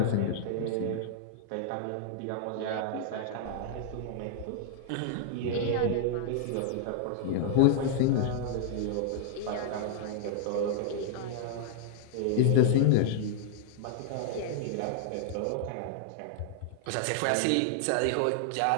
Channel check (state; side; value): different; both; correlation 0.00